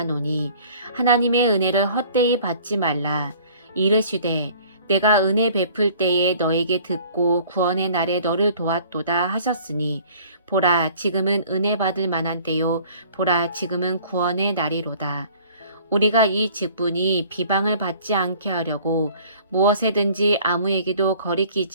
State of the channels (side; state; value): both; inverted; correlation -0.52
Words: 하나님의 은혜를 헛되이 받지 말라. 이르시되 내가 은혜 베풀 때에 너에게 듣고 구원의 날에 너를 도왔도다 하셨으니 보라 지금은 은혜 받을 만한 때요 보라 지금은 구원의 날이로다. 우리가 이 직분이 비방을 받지 않게 하려고 무엇에든지 아무에게도